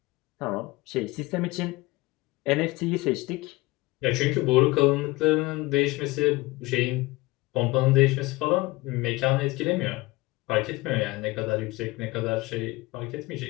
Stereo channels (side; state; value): right; quieter; 21.4 dB